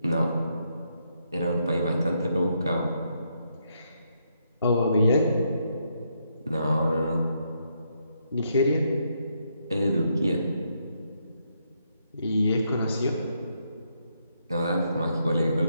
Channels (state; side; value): inverted; both; correlation -0.77